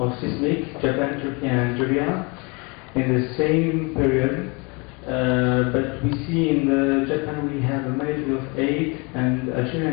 seismic: Japan, Turkey, and Algeria, in the same period. But we see in Japan we have a magnitude of 8, and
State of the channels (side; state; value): right; quieter; 30.0 dB